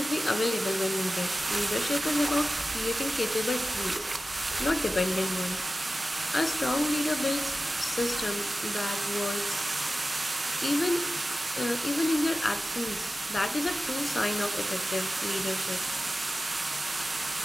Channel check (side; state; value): both; normal; correlation 0.95